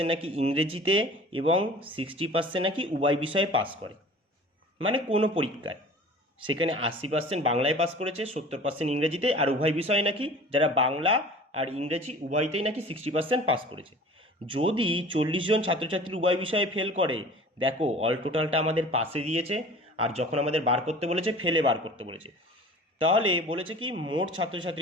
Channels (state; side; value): normal; both; correlation 0.43